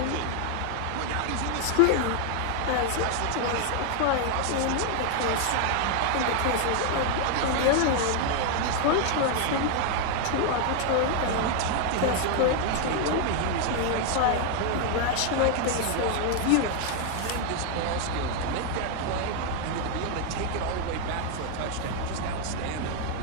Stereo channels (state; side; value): different; both; correlation 0.00